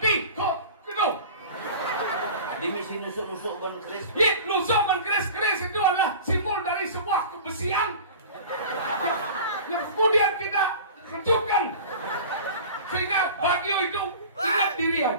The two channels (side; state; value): both; inverted; correlation -0.38